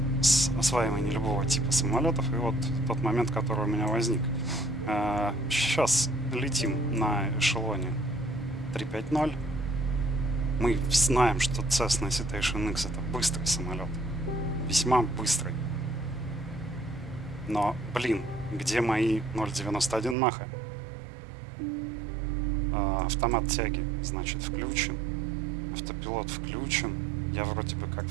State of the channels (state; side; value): drops out; left; at 20.2 s